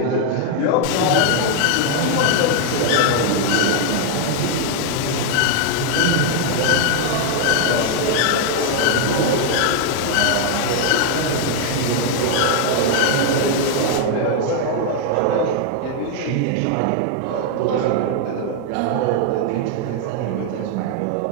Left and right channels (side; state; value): both; different; correlation 0.00